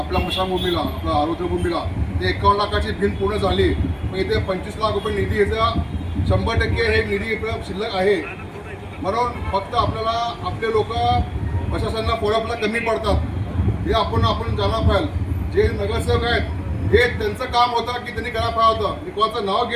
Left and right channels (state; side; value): identical; both; correlation 1.00